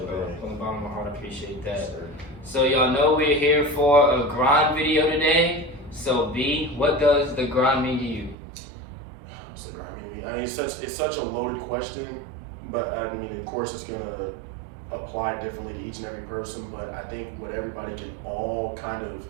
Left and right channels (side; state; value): left; drops out; at 8.3 s